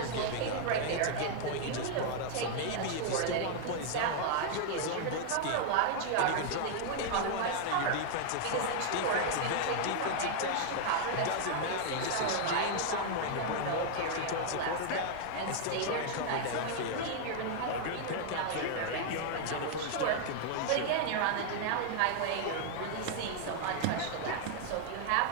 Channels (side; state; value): both; different; correlation 0.00